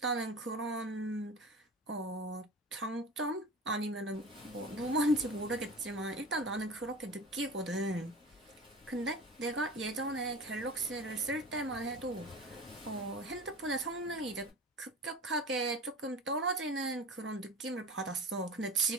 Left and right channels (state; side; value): normal; both; correlation 0.35